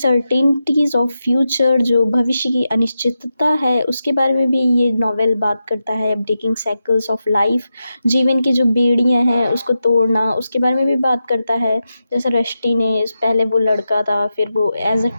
ऑफ फ्यूचर, जो भविष्य की अनिश्चितता है उसके बारे में भी ये नावल बात करता है, ब्रेकिंग साइकिल्स ऑफ लाइफ, जीवन की जो बेड़ियाँ हैं उसको तोड़ना उसके बारे में भी बात करता है। जैसे रष्टी ने पहले वो लड़का था, फिर वो एज अ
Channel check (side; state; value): both; inverted; correlation -0.89